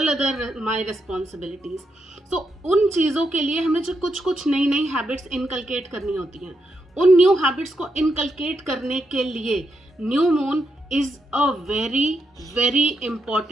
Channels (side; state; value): both; normal; correlation 0.82